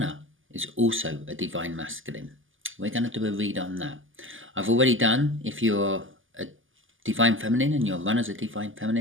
is also a divine masculine, we're going to do a read on that. I've already done if you're a divine feminine and your runner's a divine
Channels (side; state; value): left; late; 0.58 ms